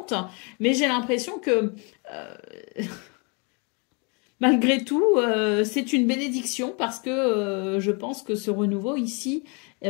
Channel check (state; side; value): quieter; right; 33.3 dB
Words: mais j'ai l'impression que malgré tout, c'est une bénédiction parce que je pense que ce renouveau ici,